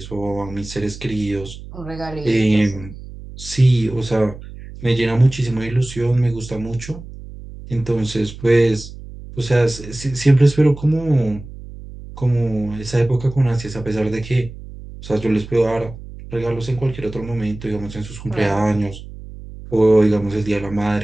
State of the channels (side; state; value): right; noise; hum, 14 dB below the sound